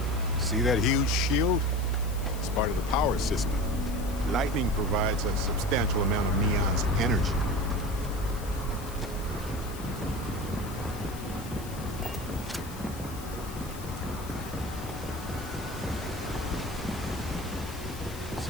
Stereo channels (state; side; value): noise; left; hiss, 16 dB below the sound